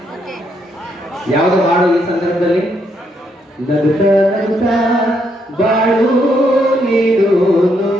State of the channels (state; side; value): normal; both; correlation 0.75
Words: ಯಾವುದು ಹಾಡು ಈ ಸಂದರ್ಭದಲ್ಲಿ? ನಗುತ್ತಾ ನಗುತ್ತಾ ಬಾಳು ನೀನು